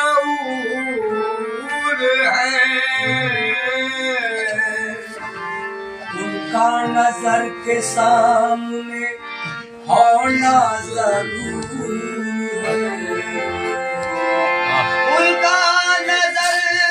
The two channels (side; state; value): both; identical; correlation 1.00